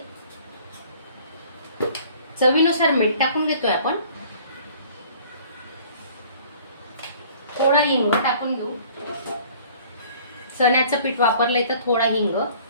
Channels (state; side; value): inverted; both; correlation -0.52